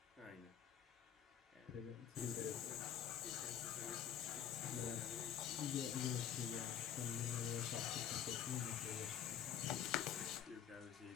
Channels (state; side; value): quieter; right; 9.2 dB